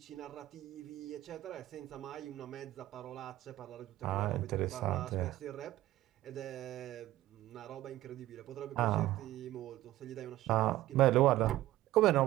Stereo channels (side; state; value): left; quieter; 15.4 dB